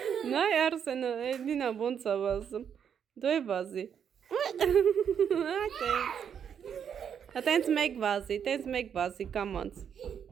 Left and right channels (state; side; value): quieter; left; 8.0 dB